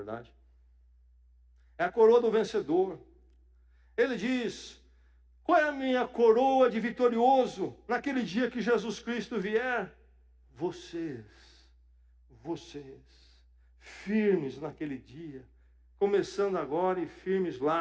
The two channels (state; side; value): identical; both; correlation 1.00